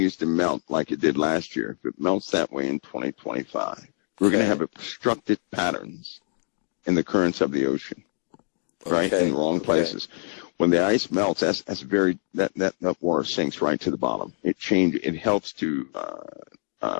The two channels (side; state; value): right; silent; digital silence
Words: to melt like it did last year, if it melts that way in 2025, we're going to have obstructed patterns in the currents of the ocean, right? In the wrong places. When the ice melts, that water sinks right to the bottom. It helps to